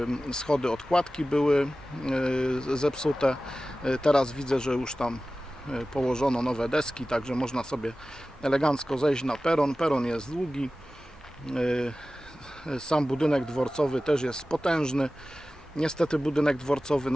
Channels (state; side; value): normal; both; correlation 0.96